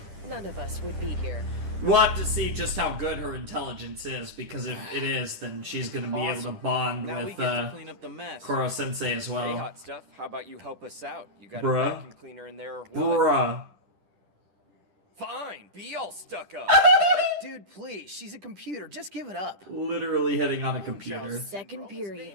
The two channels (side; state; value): left; late; 10 ms